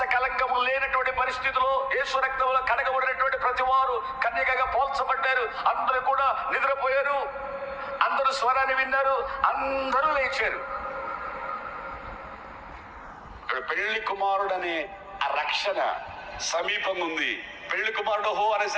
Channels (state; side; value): identical; both; correlation 1.00